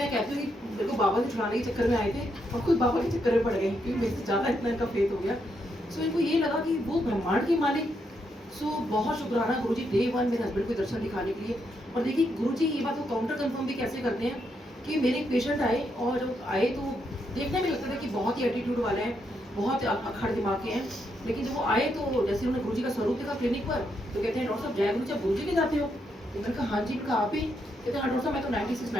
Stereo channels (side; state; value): both; normal; correlation 0.79